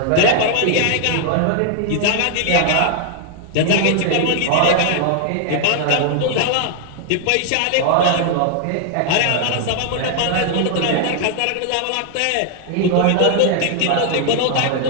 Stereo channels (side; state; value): both; different; correlation 0.00